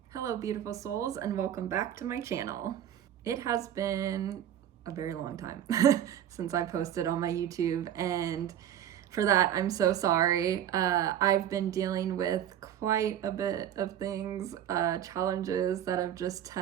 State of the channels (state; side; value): quieter; left; 10.6 dB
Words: Hello beautiful souls, and welcome back to my channel. It has been a very long time since I posted on my YouTube, and for that I'm so sorry. I've been dealing with quite a bit of things, challenges that have just